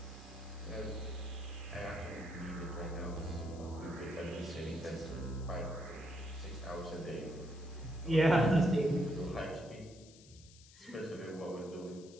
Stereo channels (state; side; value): noise; left; hiss, 22 dB below the sound